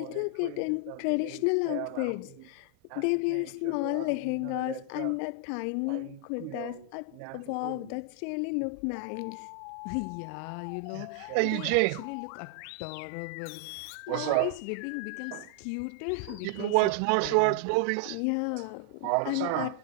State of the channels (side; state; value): both; different; correlation 0.00